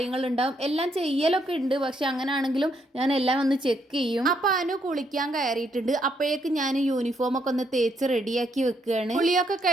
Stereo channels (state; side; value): normal; both; correlation 0.74